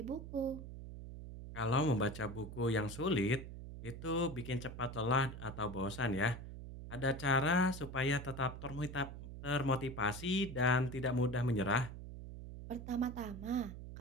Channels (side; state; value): right; noise; hum, 10 dB below the sound